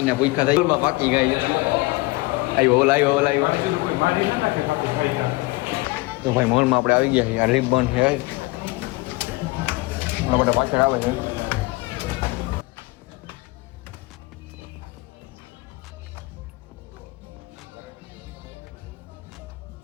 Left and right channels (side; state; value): right; quieter; 22.8 dB